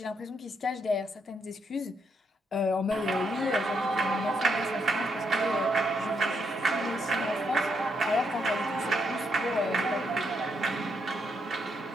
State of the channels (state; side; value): normal; both; correlation 0.77